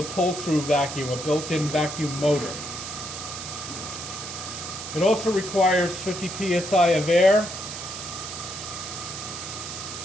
pull-through vacuum, a built-in vacuum motor. It also requires 50 psi of air.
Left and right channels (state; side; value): noise; right; hiss, 8 dB below the sound